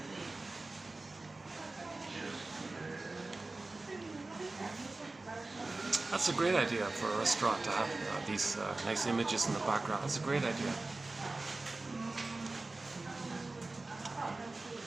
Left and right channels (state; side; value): quieter; left; 3.2 dB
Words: That's a great idea for a restaurant to have these nice images in the background. That's a great idea.